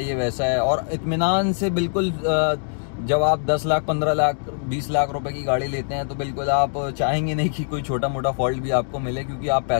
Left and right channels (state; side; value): silent; right; 64 dB below the other